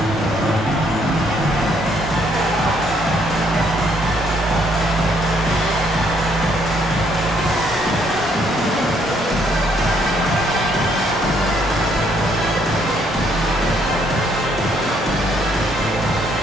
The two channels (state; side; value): normal; both; correlation 0.68